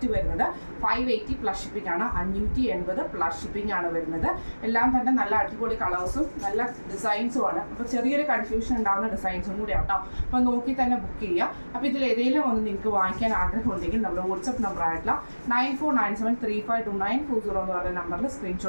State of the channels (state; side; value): inverted; both; correlation -1.00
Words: വരുന്നത് 580 പ്ലസ് ഷിപ്പിംഗ് ആണ്, 580 പ്ലസ് ഷിപ്പിംഗ് ആണ് വരുന്നത്. എല്ലാം തന്നെ നല്ല അടിപൊളി കളേഴ്സും നല്ല ഡിസൈൻസും ആണ്. അപ്പോൾ ചെറിയൊരു കൺഫ്യൂഷൻ ഉണ്ടാകുന്ന ഡിസൈൻസും കൂടി ആട്ടോ. അപ്പോൾ നോക്കി തന്നെ ബുക്ക് ചെയ്യുക. അപ്പോൾ ഇതിൽ ഏതെങ്കിലും ഒന്ന് നിങ്ങൾക്ക് വാങ്ങിക്കാൻ ആഗ്രഹം ഉണ്ടെങ്കിൽ നമ്മുടെ വാട്സപ്പ് നമ്പർ ആയിട്ടുള്ള 9497352940 എന്ന് പറയുന്ന നമ്പറിൽ